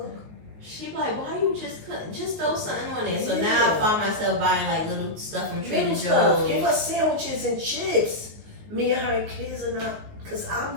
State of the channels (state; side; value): late; left; 19 ms